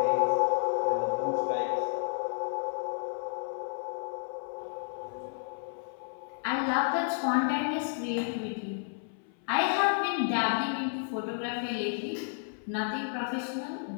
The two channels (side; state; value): right; silent; 57 dB below the other